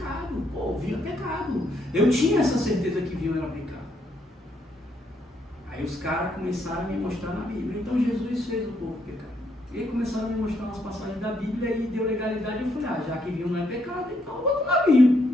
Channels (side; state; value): both; normal; correlation 0.74